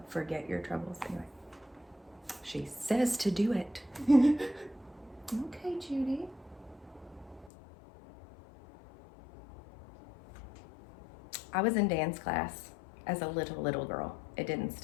forget your troubles. Anyway. She says to do it. Okay, Judy. I was in dance class as a little girl. It didn't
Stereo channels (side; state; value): right; drops out; at 7.5 s